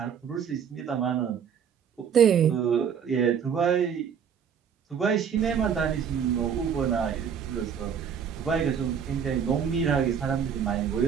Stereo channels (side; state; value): left; quieter; 7.6 dB